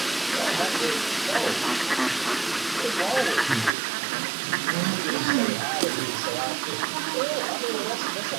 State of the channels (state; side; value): drops out; left; at 3.7 s